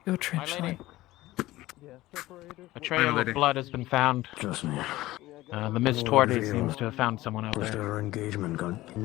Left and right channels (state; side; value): quieter; right; 17.2 dB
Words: your trench line. A trail of blood has been found. Trust me. The Miss Tordy seems to have found someone out there. Our engagement got